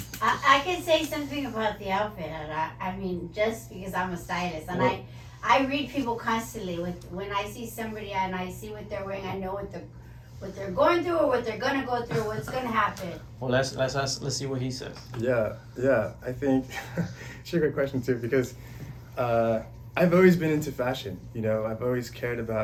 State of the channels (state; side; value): identical; both; correlation 1.00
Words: I can say something about the outfit, and I mean, just because I'm a stylist, and Well- I read people constantly. When I see somebody and I see what they're wearing, I know what they're going through or what they're gonna go through, what's gonna happen. Well, let's see what he says. Yeah. I think it's a great question too, because I've always been into fashion. You know, I've always cared